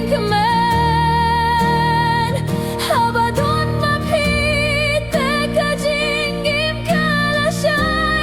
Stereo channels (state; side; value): noise; left; rumble, 23 dB below the sound